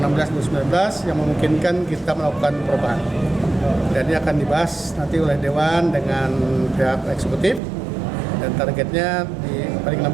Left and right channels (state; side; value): drops out; left; at 7.6 s